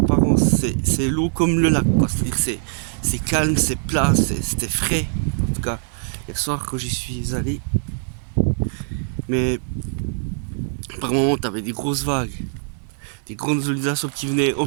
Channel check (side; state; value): left; silent; 64 dB below the other